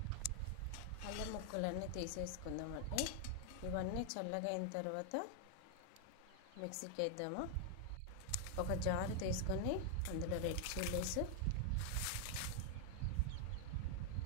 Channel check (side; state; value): both; different; correlation 0.00